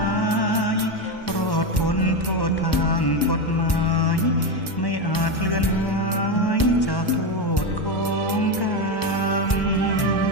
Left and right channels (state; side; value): late; right; 1.1 ms